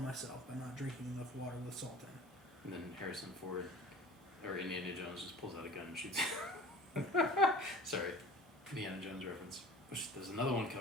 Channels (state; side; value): normal; both; correlation 0.43